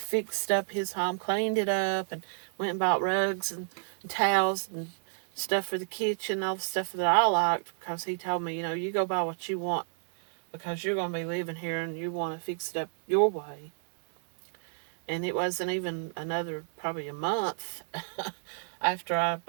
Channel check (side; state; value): left; silent; digital silence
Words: up his home, cleaned it up, and went and bought rugs and towels and stuff for the kitchen, all the stuff that I liked, because he told me, you go buy what you want because you're going to be living here and you want to fix it up your way. And it wasn't even another, probably a month after I